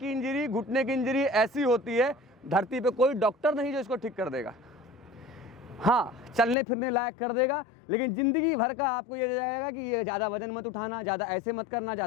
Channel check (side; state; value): right; drops out; at 6.6 s